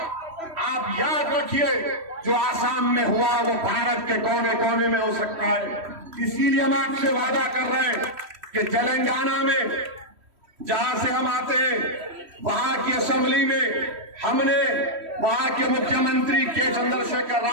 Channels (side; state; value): left; late; 3.1 ms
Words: आप याद रखिए जो आसाम में हुआ वो भारत के कोने कोने में हो सकता है। इसीलिए हम आपसे वादा कर रहे हैं कि तेलंगाना में जहां से हम आते हैं वहां की असेंबली में हमने वहां के मुख्यमंत्री के चंद्रशेखर